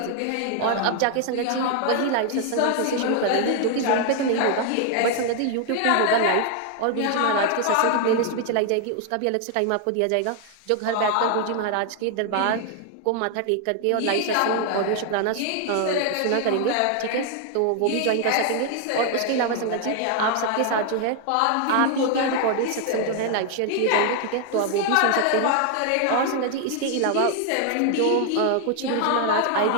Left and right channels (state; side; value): different; both; correlation 0.00